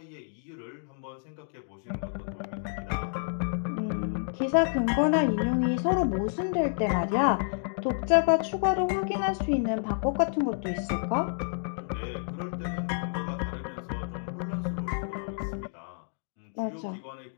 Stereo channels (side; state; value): right; silent; digital silence